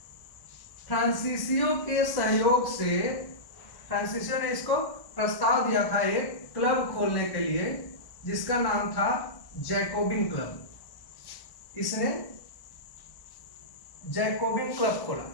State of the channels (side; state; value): right; late; 1.1 ms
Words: फ्रांसीसियों के सहयोग से, फ्रांसीसियों ने इसको प्रस्ताव दिया था एक क्लब खोलने के लिए जिसका नाम था जैकोबिन क्लब। इसने जैकोबिन क्लब खोला।